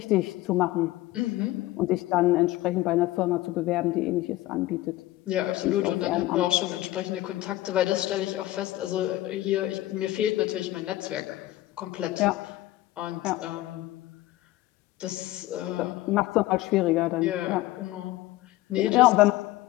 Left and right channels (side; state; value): right; quieter; 16.6 dB